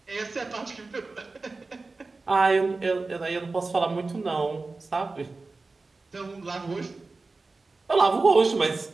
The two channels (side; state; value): left; quieter; 3.7 dB